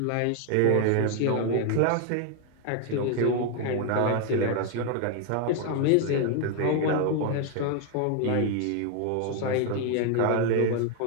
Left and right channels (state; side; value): different; both; correlation 0.01